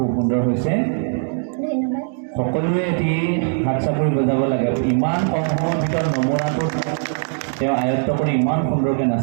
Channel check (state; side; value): silent; left; 65 dB below the other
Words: সুন্দৰ হৈছে সকলোৱে এটি হাত চাপৰি বজাব লাগে ইমান কম সময়ৰ ভিতৰত নমৰাটো তেওঁ আয়ত্ত কৰি ইমান সুন্দৰকৈ